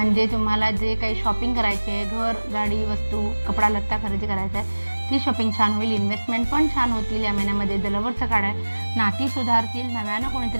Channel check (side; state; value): both; inverted; correlation -1.00